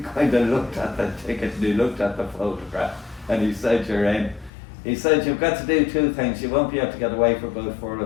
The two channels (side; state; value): right; drops out; at 4.5 s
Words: of looked at the ticket and he looked at the photograph and he said, you're in. He said, you've got to do 2 things. You won't be able to get away for about 4